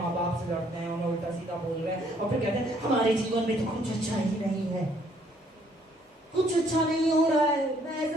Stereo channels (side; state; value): both; normal; correlation 0.65